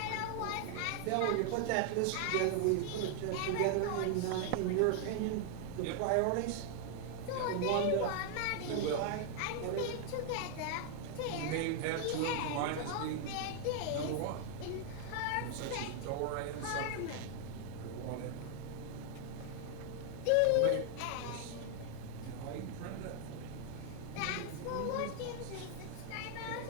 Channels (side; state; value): both; different; correlation 0.00